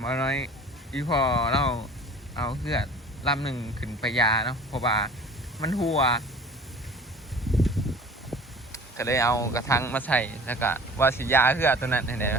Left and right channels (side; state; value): both; normal; correlation 0.44